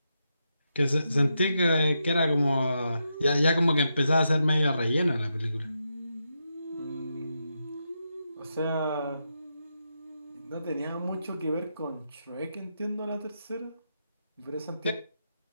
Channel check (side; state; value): both; inverted; correlation -0.85